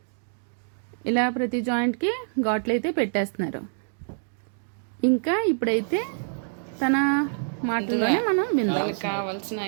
ఇలా ప్రతి జాయింట్కి ఘాట్లు అయితే పెట్టేస్తున్నారు. ఇంకా ఇప్పుడైతే తన మాటల్లోనే మనం విందాం. కావాల్సిన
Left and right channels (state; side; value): silent; left; digital silence